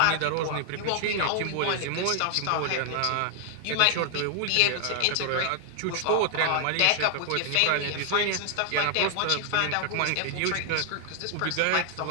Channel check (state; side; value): different; both; correlation 0.00